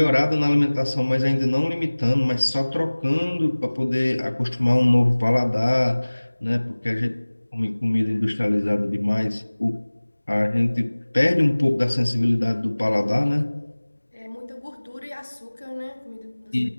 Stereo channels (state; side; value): inverted; both; correlation -1.00